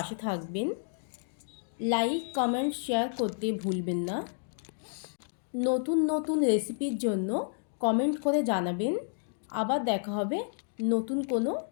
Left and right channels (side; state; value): right; silent; digital silence